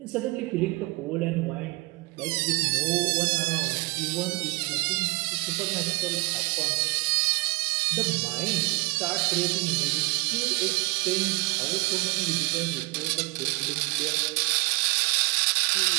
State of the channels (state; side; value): quieter; left; 24.9 dB